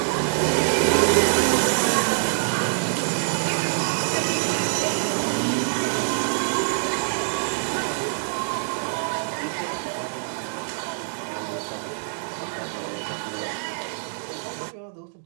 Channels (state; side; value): silent; left; digital silence